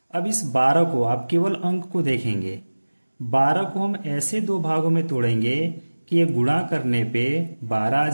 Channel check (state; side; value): inverted; both; correlation -1.00